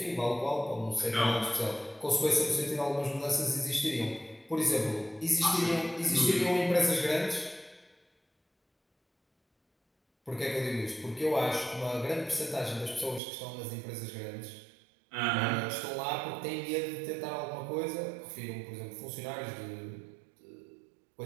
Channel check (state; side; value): drops out; left; at 13.2 s